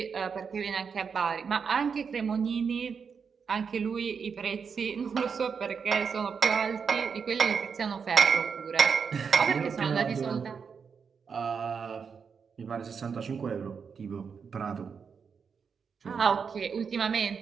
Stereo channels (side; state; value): left; quieter; 6.1 dB